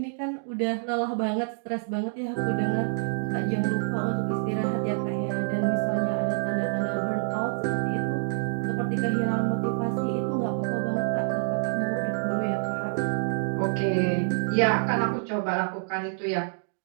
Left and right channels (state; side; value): silent; left; digital silence